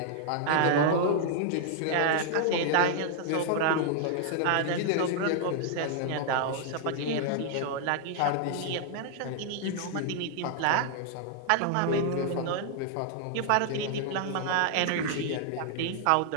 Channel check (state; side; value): different; both; correlation 0.00